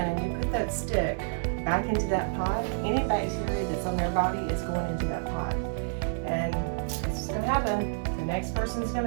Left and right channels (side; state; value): left; silent; digital silence